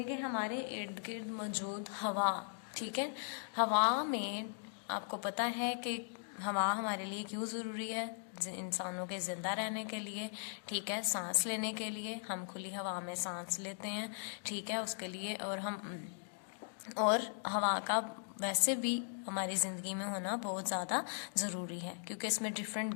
कि हमारे इर्द गिर्द मौजूद हवा. ठीक है, हवा में आपको पता है कि हवा हमारे लिए क्यों ज़रूरी है, इंसानों के ज़िंदा रहने के लिए. ठीक है, सांस लेने के लिए हम खुली हवा में सांस लेते हैं. ठीक है, उसके लिए और हवा का वैसे भी हमारी ज़िंदगी में होना बहुत ज़्यादा ज़रूरी है, क्योंकि इसमें डिफरेंट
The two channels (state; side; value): silent; right; digital silence